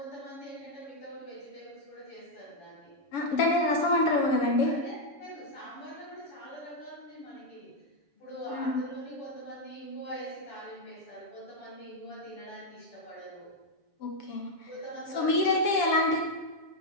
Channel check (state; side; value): late; right; 7.1 ms